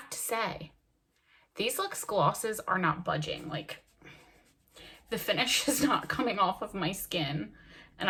to say, these Luxe glosses are not budging. Like, the finish is not coming off of my skin. And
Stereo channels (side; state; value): both; identical; correlation 1.00